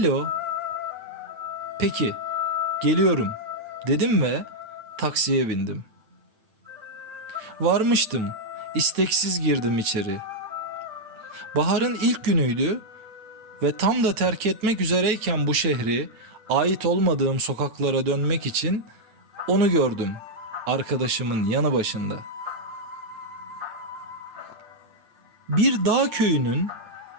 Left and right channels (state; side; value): late; left; 9.3 ms